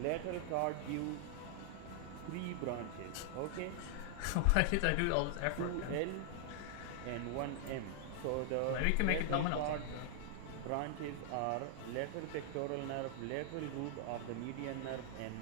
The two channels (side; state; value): both; different; correlation 0.00